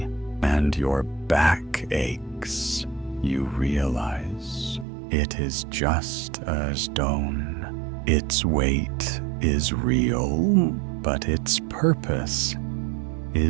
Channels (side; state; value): left; drops out; at 4.9 s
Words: and your back aches, you realize it is just a stone. Its weight is real, but its purpose